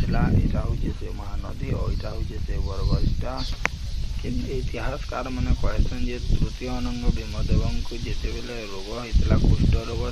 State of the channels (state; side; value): identical; both; correlation 1.00